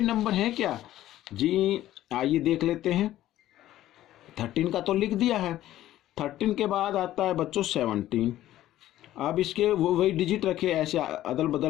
नंबर हैं क्या जी, आइए देख लेते हैं। 13 का तो लिख दिया है, 13 के बाद आता है बच्चों 17। अब इसके वो वही डिजिट रखे, ऐसे अदल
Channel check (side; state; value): right; quieter; 13.8 dB